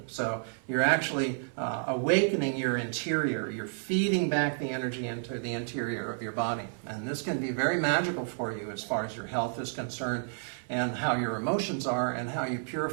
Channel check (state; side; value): silent; left; 57 dB below the other